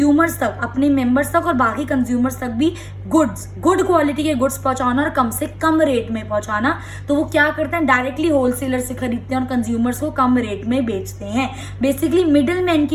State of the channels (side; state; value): both; identical; correlation 1.00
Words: तक, अपने मेंबर्स तक और बाकी कंज्यूमर्स तक भी गुड क्वालिटी के गुड्स पहुंचाना और कम से कम रेट में पहुंचाना। तो वो क्या करते हैं, डायरेक्टली होलसेलर से खरीदते हैं और कंज्यूमर्स को कम रेट में बेचते हैं। बेसिकली मिडिल मैन